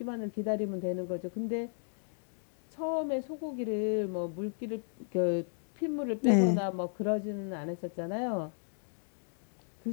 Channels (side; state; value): right; silent; digital silence